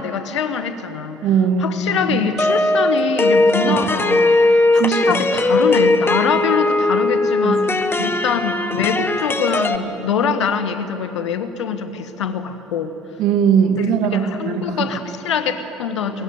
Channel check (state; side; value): normal; both; correlation 0.61